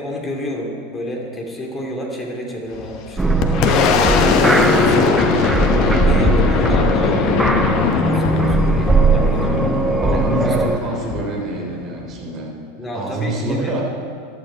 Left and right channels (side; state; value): both; normal; correlation 0.49